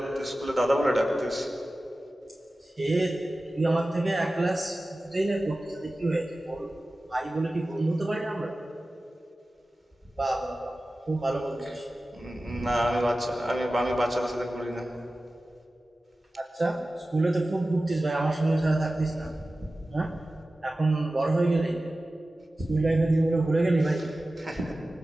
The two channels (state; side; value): normal; both; correlation 0.95